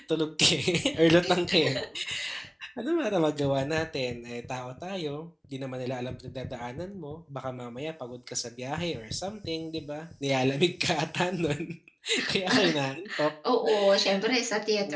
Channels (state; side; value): identical; both; correlation 1.00